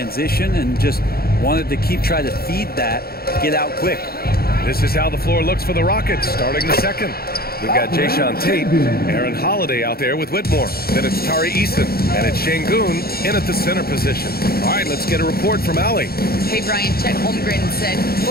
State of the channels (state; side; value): late; right; 0.44 ms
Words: and just wanted to keep trying to feed that, get out quick. This is how the floor looks for the Rockets starting the second. We've got Jayshawn Tate, Aaron Holiday out there with Whitmore. Then it's Tari Eason, and it's Şengün in at the center position. All right, let's get a report from Allie. Hey, Brian, Chet Holmgren said,